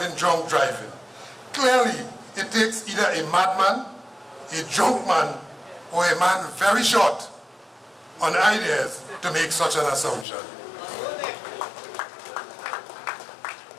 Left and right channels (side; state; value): right; drops out; at 10.2 s